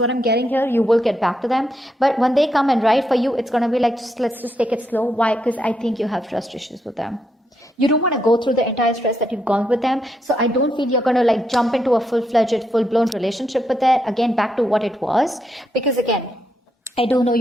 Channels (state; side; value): normal; both; correlation 0.80